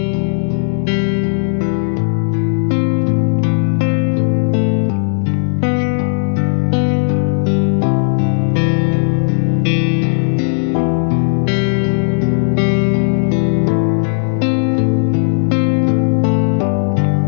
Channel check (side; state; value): right; silent; digital silence